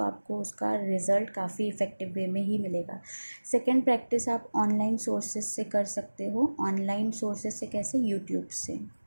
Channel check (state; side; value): inverted; both; correlation -1.00